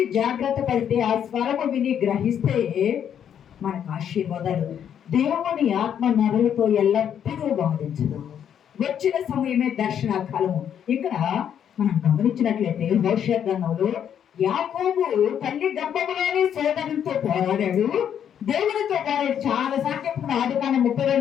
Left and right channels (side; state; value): right; quieter; 9.0 dB